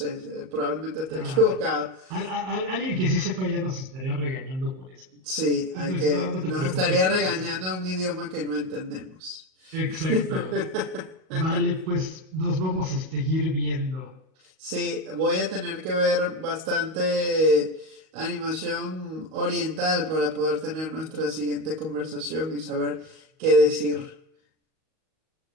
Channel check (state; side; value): late; left; 38 ms